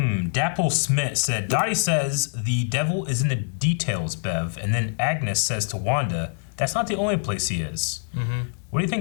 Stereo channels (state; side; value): silent; right; digital silence